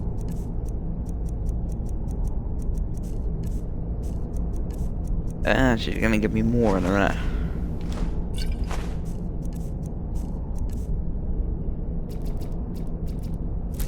She's gonna give me more in a minute.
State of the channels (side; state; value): both; identical; correlation 1.00